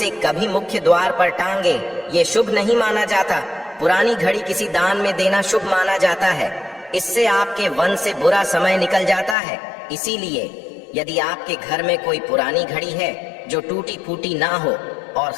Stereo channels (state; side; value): drops out; right; at 9.3 s